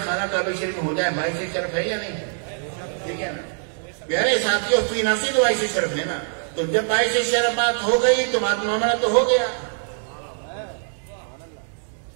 خانہ کعبہ شریف میں ہو جائے باعث شرف ہے یا نہیں ہے؟ ٹھیک ہے نا پیارے ساتھیوں، فی نفس ہی تو باعث شرف ہے نا، تو جب باعث شرف بات ہو گئی تو بات معاملہ تو ہو گیا۔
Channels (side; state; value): left; silent; digital silence